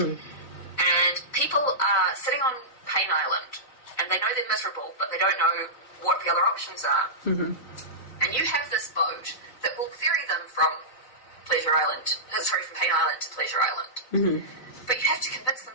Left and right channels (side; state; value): right; late; 4.0 ms